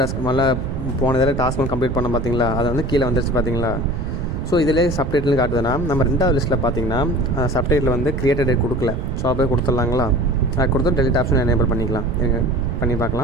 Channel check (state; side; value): noise; right; rumble, 3 dB below the sound